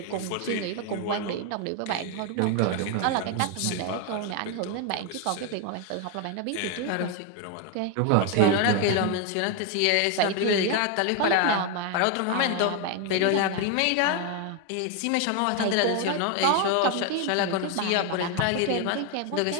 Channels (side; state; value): both; different; correlation 0.01